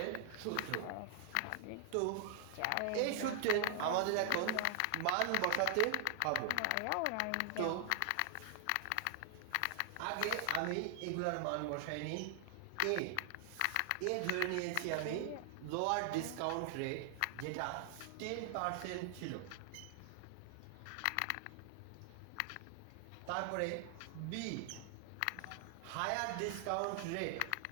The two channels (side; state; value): both; different; correlation 0.00